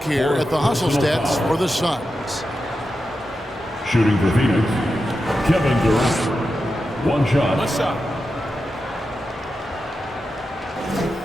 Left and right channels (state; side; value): normal; both; correlation 0.90